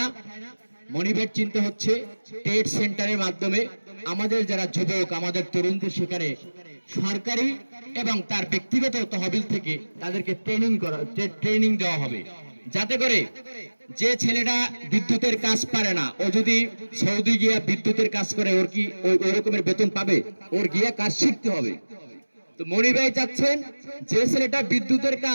মনি ভাইয়ের চিন্তা হচ্ছে ট্রেড সেন্টারের মাধ্যমে আমাদের যারা যুবক, আমাদের তরুণদের সেখানে সরকারি এবং তার ব্যক্তিগত তহবিল থেকে তাদেরকে ট্রেনিং দেওয়া হবে, যাতে করে যে ছেলেটা বিদ্যুতের কাজ পারে না, ও যদি সৌদি গিয়া বিদ্যুতের কাজ করে, ওর কি ওই রকমের বেতন পাবে? ওর গিয়া কাজ শিখতে হবে। তো মনি ভাই চাচ্ছেন যে ছেলেটা বিদ্যুতের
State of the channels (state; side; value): inverted; both; correlation -1.00